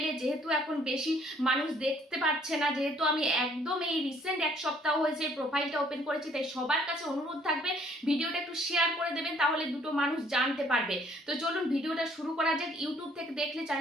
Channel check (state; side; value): normal; both; correlation 0.61